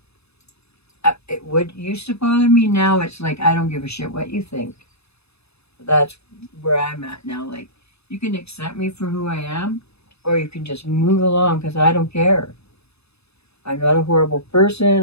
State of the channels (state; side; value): late; right; 0.79 ms